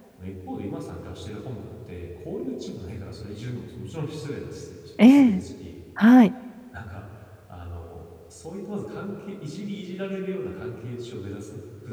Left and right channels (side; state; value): both; identical; correlation 1.00